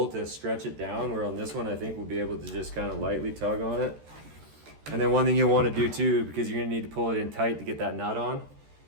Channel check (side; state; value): left; late; 13 ms